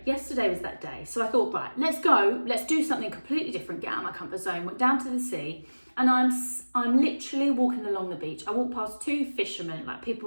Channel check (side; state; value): both; inverted; correlation -1.00